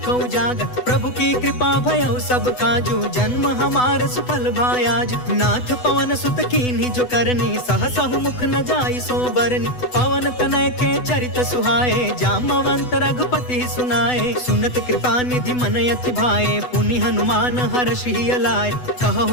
उजागर। प्रभु की कृपा भयउ सब काजू, जन्म हमार सुफल भायाज। नाथ पवन सुत कीन्ही जो करनी, सहसहु मुख न जाई सो बरनी। पवन तनय के चरित सुहाए, जामवंत रघुपति सुनाए। सुनत कृपा निधि मन अति भाए, पुनि हनुमान हर्ष ही अलाए।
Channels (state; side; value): late; right; 8.0 ms